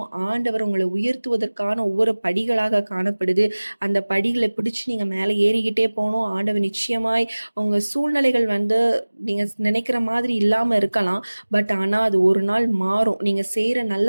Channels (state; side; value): inverted; both; correlation -1.00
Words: ஆண்டவர் உங்களை உயர்த்துவதற்கான ஒவ்வொரு படிகளாக காணப்படுது. அந்த படிகளை பிடிச்சு நீங்க மேலே ஏறிக்கிட்டே போகணும். ஆண்டவர் நிச்சயமாய் உங்க சூழ்நிலைகள் நீங்க நினைக்கிற மாதிரி இல்லாம இருக்கலாம். பட் ஆனா அது ஒரு நாள் மாறும். நீங்க செய்யற நல்ல